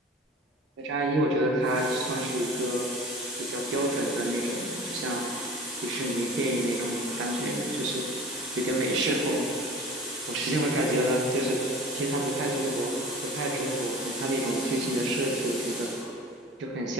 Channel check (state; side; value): normal; both; correlation 0.40